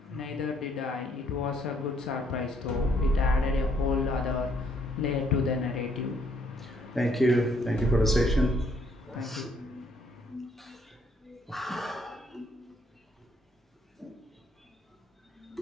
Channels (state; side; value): normal; both; correlation 0.68